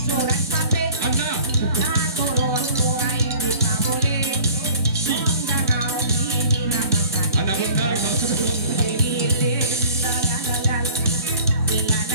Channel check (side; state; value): both; inverted; correlation -0.48